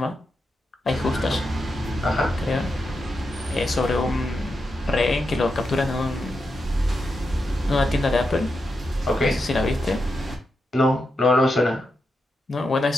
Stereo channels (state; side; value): normal; both; correlation 0.87